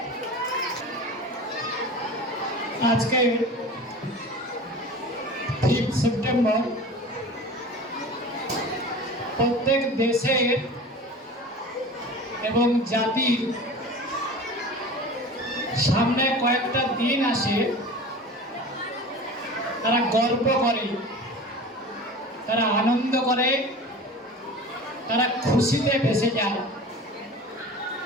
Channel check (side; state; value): both; normal; correlation 0.36